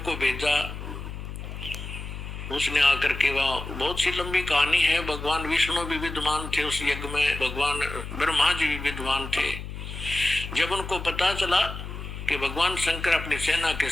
भेजा, उसने आकर के वहां, बहुत सी लंबी कहानी है। भगवान विष्णु भी विद्वान थे उस यज्ञ में, भगवान ब्रह्मा जी भी विद्वान थे। जब उनको पता चला कि भगवान शंकर अपनी सेना के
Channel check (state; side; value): noise; left; hum, 9 dB below the sound